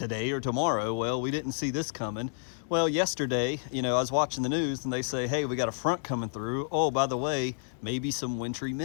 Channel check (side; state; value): right; silent; digital silence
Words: or tomorrow. Well, we didn't see this coming. Well, yesterday, I was watching the news and they say, hey, we got a front coming through. Oh, by the way, maybe some wintry